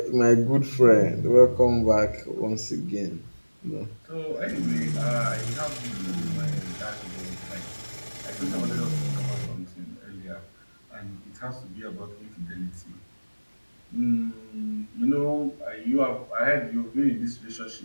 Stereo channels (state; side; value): inverted; both; correlation -1.00